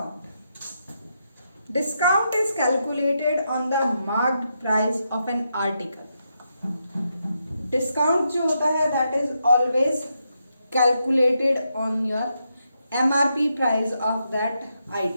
Discount is calculated on the marked price of an article. Discount जो होता है that is always calculated on your MRP price of that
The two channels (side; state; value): both; inverted; correlation -0.82